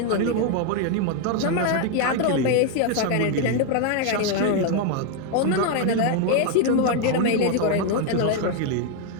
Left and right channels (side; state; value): both; different; correlation 0.00